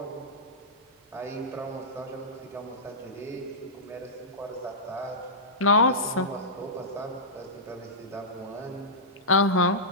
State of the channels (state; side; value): normal; both; correlation -0.14